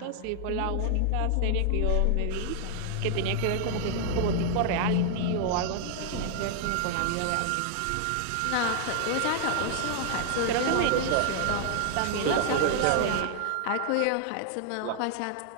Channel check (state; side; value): different; both; correlation 0.00